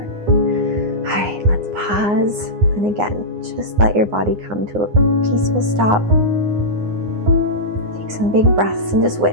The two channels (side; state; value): left; late; 9.7 ms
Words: All right, let's pause. And again, just let your body come to a peaceful stop. Take some big breaths and just